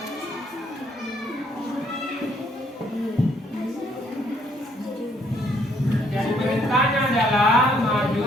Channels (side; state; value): both; normal; correlation 0.67